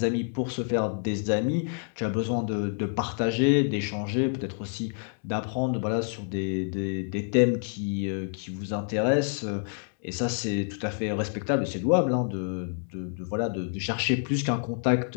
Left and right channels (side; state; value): right; silent; 59 dB below the other